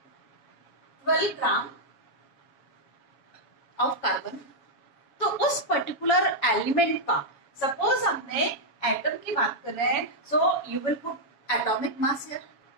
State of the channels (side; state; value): right; late; 7.2 ms